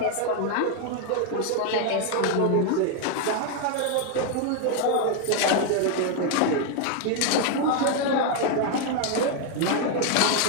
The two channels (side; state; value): both; different; correlation 0.01